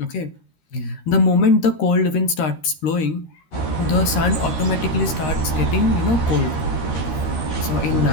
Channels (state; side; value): late; right; 13 ms